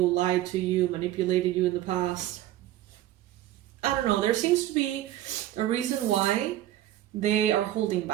lied to you, manipulated you in the past. I don't know. There seems to be a reason why they are holding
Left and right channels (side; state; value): left; quieter; 13.7 dB